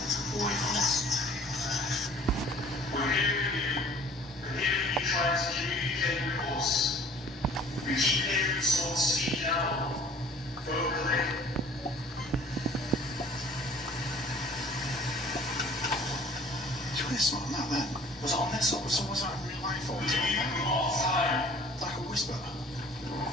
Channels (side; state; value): both; normal; correlation 0.51